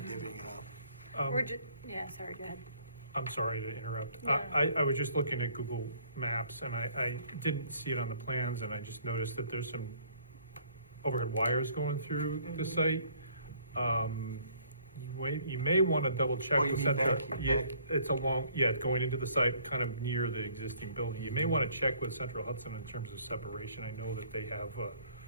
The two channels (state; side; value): inverted; both; correlation -0.59